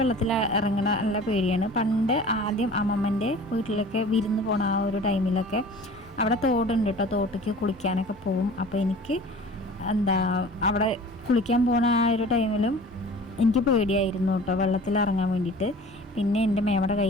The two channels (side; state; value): both; normal; correlation 0.43